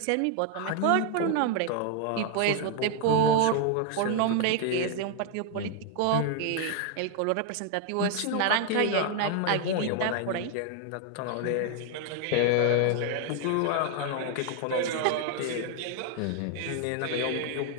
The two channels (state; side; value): different; both; correlation 0.00